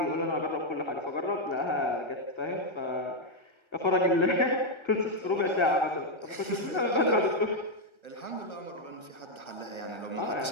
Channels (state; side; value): late; right; 1.3 ms